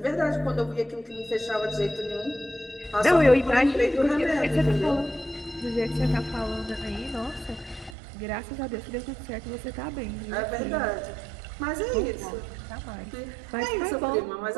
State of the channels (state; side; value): drops out; left; at 8.0 s